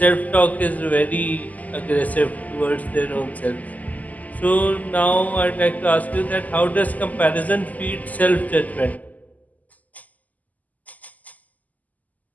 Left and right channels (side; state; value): right; late; 0.078 ms